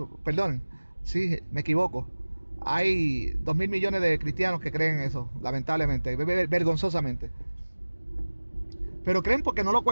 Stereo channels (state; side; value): inverted; both; correlation -1.00